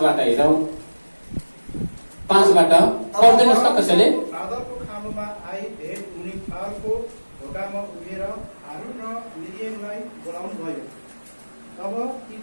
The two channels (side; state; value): both; inverted; correlation -1.00